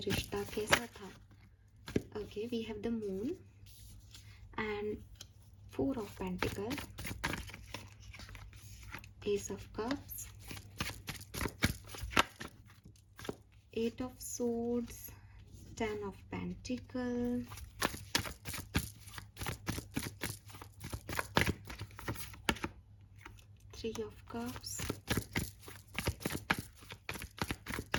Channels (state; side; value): identical; both; correlation 1.00